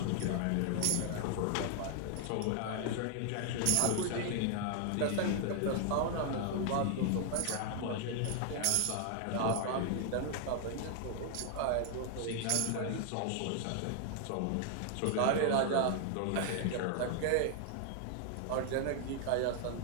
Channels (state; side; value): different; both; correlation 0.00